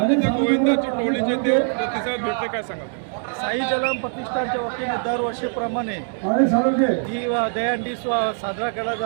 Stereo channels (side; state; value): left; silent; 64 dB below the other